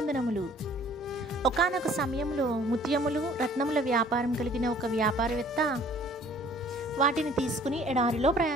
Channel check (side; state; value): both; normal; correlation 0.55